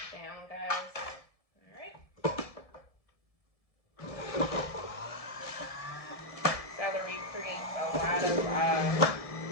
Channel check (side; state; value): right; late; 1.7 ms